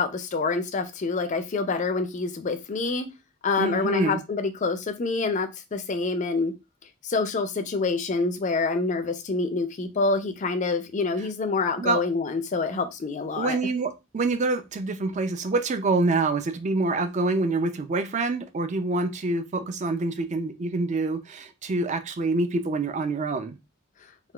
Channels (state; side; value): normal; both; correlation 0.25